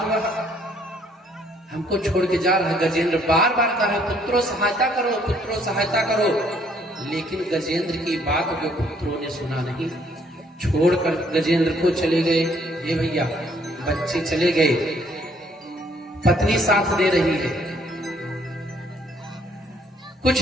वह हमको छोड़ के जा रहा है। गजेंद्र बार बार कह रहे, पुत्रों सहायता करो, पुत्रों सहायता करो। लेकिन गजेंद्र की बात जो पुत्रों ने सुना नहीं, छोड़कर गजेंद्र को चले गए। हे भैया, बच्चे चले गए, पत्नी साथ दे रही है।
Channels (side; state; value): both; normal; correlation 0.65